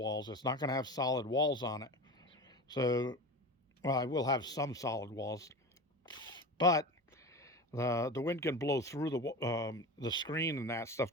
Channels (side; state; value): both; normal; correlation 0.28